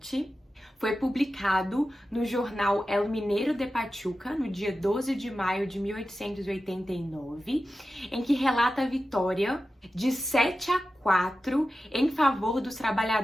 foi publicado no jornal El Mineiro de Pachuca, no dia 12 de maio de 1889, em que relata a vitória de 7-4 em favor dos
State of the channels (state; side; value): normal; both; correlation 0.92